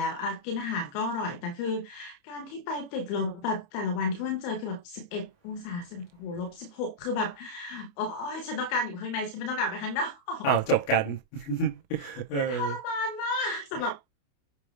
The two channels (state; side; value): late; right; 29 ms